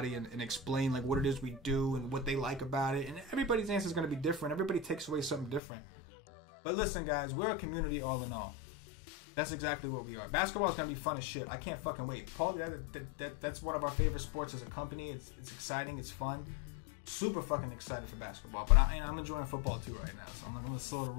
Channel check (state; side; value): drops out; right; at 5.6 s